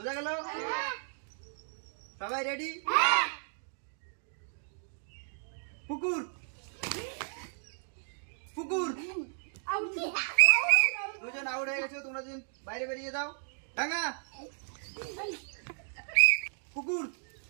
গেল? সবাই রেডি? পুকুর পুকুর। দুজন আউট হয়ে গেছে, তোমরা দুজন বাইরে বেরিয়ে যাও। ডাঙা পুকুর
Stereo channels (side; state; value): left; silent; digital silence